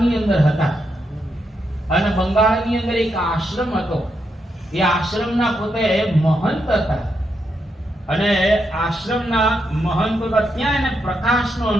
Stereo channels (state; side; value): normal; both; correlation 0.82